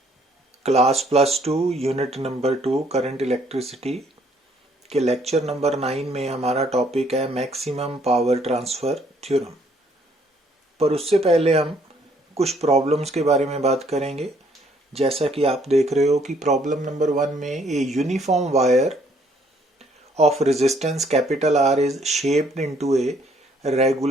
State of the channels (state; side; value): normal; both; correlation 0.65